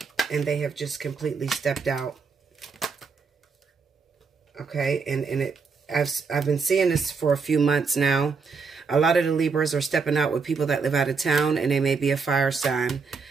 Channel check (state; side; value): quieter; left; 5.0 dB